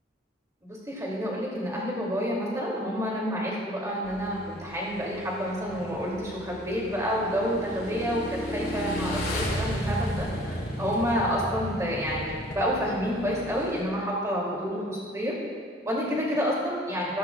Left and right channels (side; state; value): both; normal; correlation 0.51